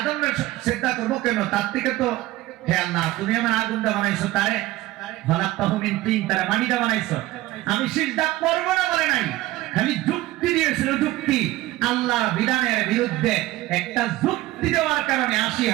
সিজদা করবো কেন? তার থেকে তো হে আল্লাহ তুমি আমার আগুনটা বানাইছো, তারে খালাকতাহু মিন তিন, তারে মাটিটা বানাইছো, আমি সিজদা করব না বলে নাই, খালি যুক্তি দিয়েছিল। যুক্তি আল্লাহর বিধানের বিরুদ্ধে একটা যুক্তি দেওয়ার কারণে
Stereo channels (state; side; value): quieter; left; 17.2 dB